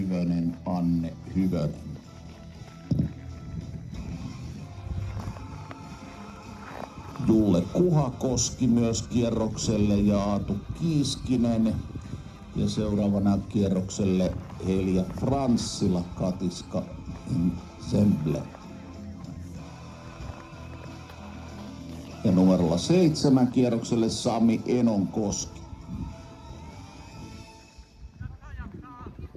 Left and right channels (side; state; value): both; identical; correlation 1.00